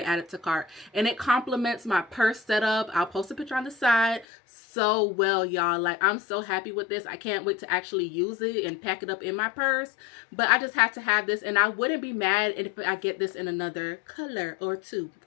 add it to cart. And it complements my purse setup. I'll post a picture on the side. So well, y'all, like, I'm so happy with this. I can't wait to actually use it and pack it up in my purse. But I just had to have this, and I wouldn't be mad if I get this in another color or 2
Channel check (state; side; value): drops out; right; at 4.2 s